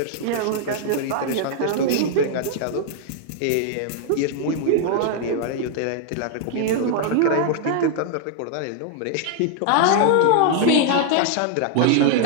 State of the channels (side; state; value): both; different; correlation 0.00